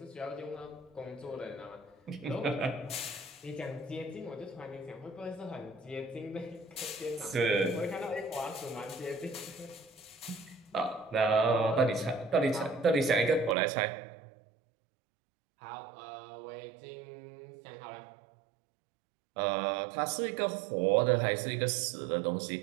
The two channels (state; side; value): drops out; left; at 13.6 s